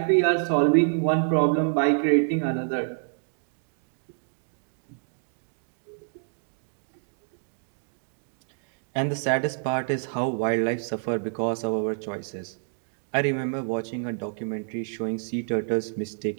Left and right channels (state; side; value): silent; left; digital silence